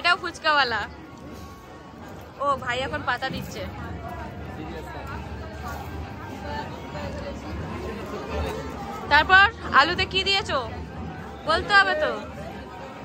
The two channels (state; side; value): identical; both; correlation 1.00